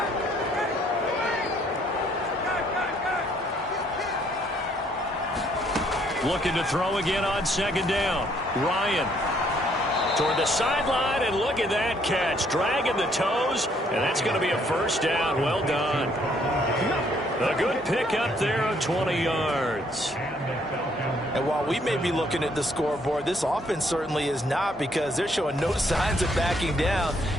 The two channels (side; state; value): both; normal; correlation 0.67